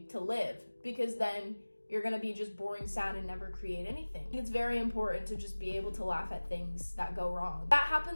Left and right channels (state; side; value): inverted; both; correlation -1.00